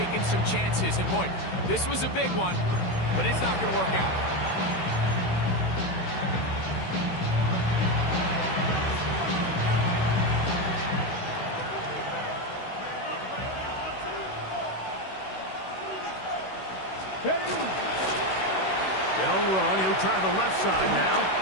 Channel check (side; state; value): right; late; 16 ms